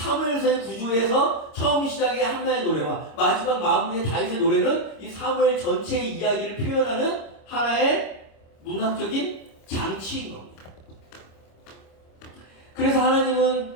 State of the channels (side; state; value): right; late; 25 ms